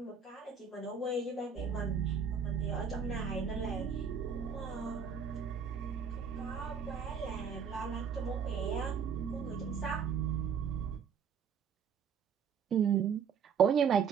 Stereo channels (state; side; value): quieter; left; 6.6 dB